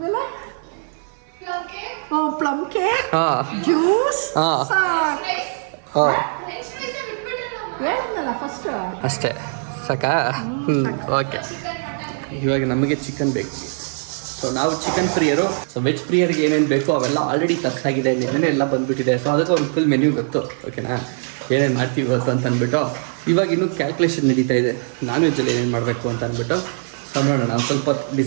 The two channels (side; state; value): left; silent; 58 dB below the other